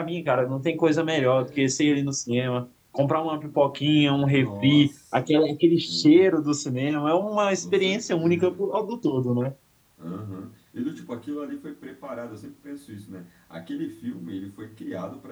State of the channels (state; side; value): identical; both; correlation 1.00